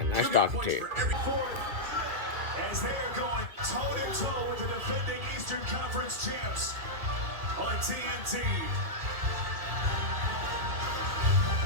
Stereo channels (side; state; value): left; late; 2.1 ms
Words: nice talking to you. As they are going toe-to-toe with the defending Eastern Conference champs on TNT.